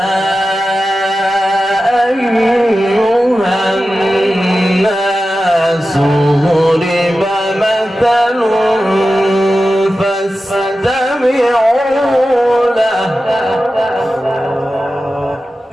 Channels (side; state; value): both; normal; correlation 0.93